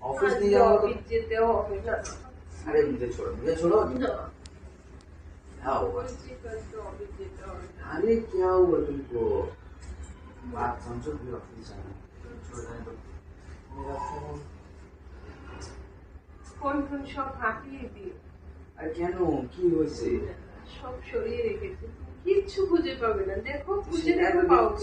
Office नहीं जाऊंगा तो ऑफिस जेते हो ऑफिस ना। अरे मुझे छोड़ो ना क्या हुआ? ऑफिस जेते हो। अरे क्या हुआ तुमको? बात समझो, फिर ऑफिस जाना छोड़ देना तो मेरा फोन ফোন ফোন সব হাতিয়ে দিয়ে আর কেন কি হয়েছে? সব সরিয়ে রেখেছে, কিচ্ছু খুঁজে পাবে না। দেখো খুঁজে সেটা দেখো তো পাও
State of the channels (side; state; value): both; identical; correlation 1.00